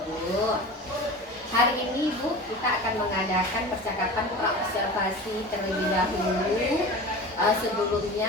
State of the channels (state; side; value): normal; both; correlation 0.34